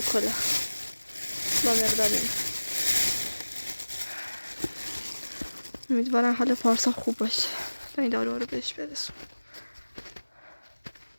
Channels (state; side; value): inverted; both; correlation -1.00